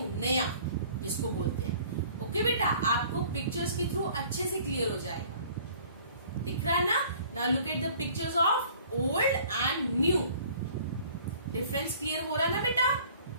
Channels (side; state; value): both; inverted; correlation -0.52